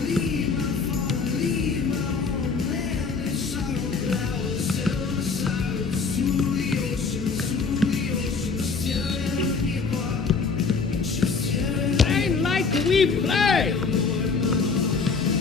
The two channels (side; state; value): right; quieter; 4.8 dB